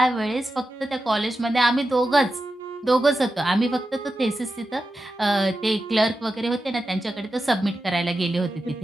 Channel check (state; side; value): normal; both; correlation 0.91